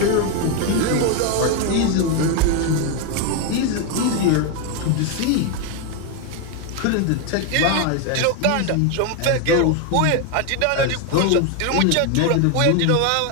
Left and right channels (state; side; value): different; both; correlation 0.01